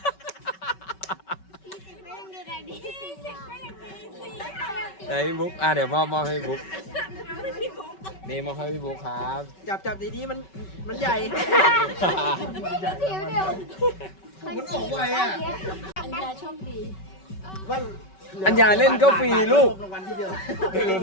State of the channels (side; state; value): right; late; 5.3 ms